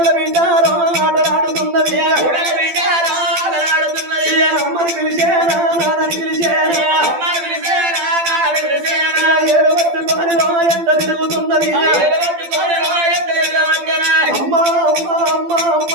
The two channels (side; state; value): left; late; 12 ms